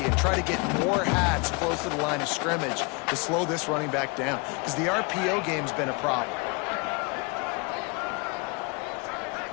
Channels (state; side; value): quieter; right; 30.5 dB